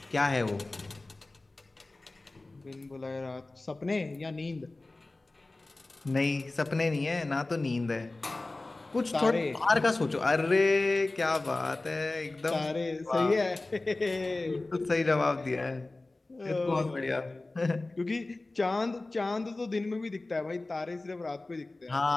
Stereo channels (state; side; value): quieter; right; 3.0 dB